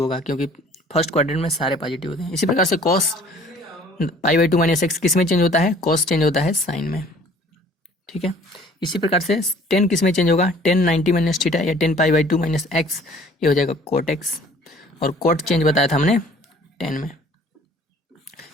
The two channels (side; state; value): both; normal; correlation 0.53